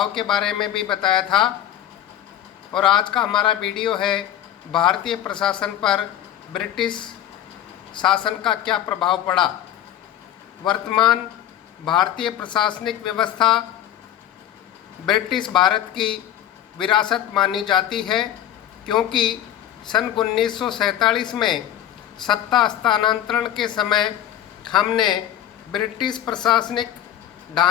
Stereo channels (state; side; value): quieter; right; 11.3 dB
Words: के बारे में भी बताया था, और आज का हमारा वीडियो है भारतीय प्रशासन पर ब्रिटिश शासन का क्या प्रभाव पड़ा। वर्तमान भारतीय प्रशासनिक व्यवस्था ब्रिटिश भारत की विरासत मानी जाती है, क्योंकि सन 1947 में सत्ता हस्तांतरण के समय हमने ब्रिटिश प्रशासनिक